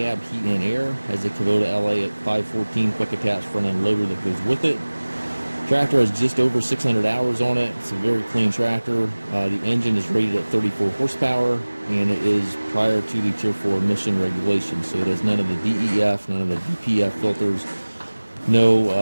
heat and air. Has a Kubota LA514 quick attach front end loader that goes with it. Tractor has just over 600 hours on it. It's a very clean tractor. The engine is rated at 34 horsepower and it is prior to the Tier 4 emission regulations. So it has none of the DEF, none of the DPF filters,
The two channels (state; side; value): inverted; both; correlation -1.00